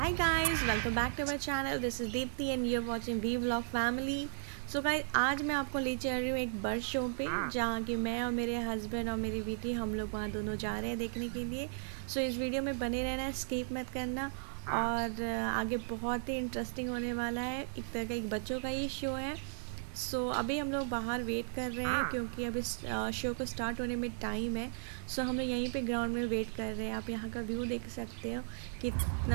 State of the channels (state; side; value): silent; left; digital silence